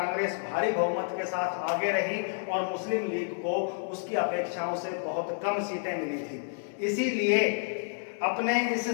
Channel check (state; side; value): silent; right; digital silence